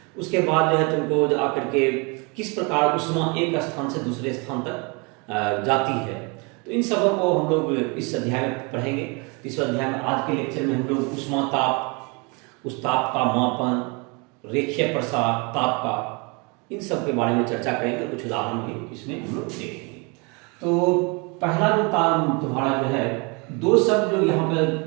उसके बाद जो है तुमको आकर के किस प्रकार उष्मा एक स्थान से दूसरे स्थान तक जाती है, तो इन सबों को हम लोग इस अध्याय में पढ़ेंगे। इस अध्याय में आज के लेक्चर में हम लोग उष्मा ताप, उस ताप का मापन, रेखीय प्रसार ताप का, इन सब के बारे में चर्चा करेंगे। कुछ उदाहरण भी इसमें हम लोग देखेंगे। तो पहला जो ताप तुम्हारा जो है, 2 शब्द जो यहाँ पे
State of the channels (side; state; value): left; quieter; 30.5 dB